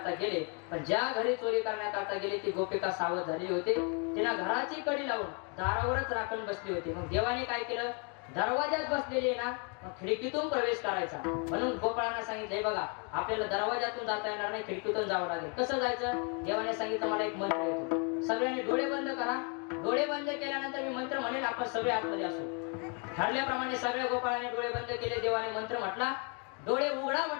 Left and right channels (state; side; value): quieter; right; 36.8 dB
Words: गेले. पण ज्या घरी चोरी करण्याकरता गेले ती गोपिका सावध झालेली होती. तिला घराची कडी लावून दारावरच राखून बसली होती. मग देवाने काय केलं? दरवाजात बसलेली ना, मग खिडकीतून प्रवेश करायचा. म्हणून गोपाळांना सांगितलं बघा आपल्याला दरवाजातून जाता येणार नाही, खिडकीतून जावं लागेल. कसं जायचं? देवाने सांगितलं मला एक मंत्र येतो, सगळ्यांनी डोळे बंद करा. डोळे बंद केल्यानंतर मी मंत्र म्हणेल, आपण सगळे आतमध्ये असू. ठरल्याप्रमाणे सगळ्या गोपाळाने डोळे बंद केले. देवाने मंत्र म्हटला, डोळे उघडा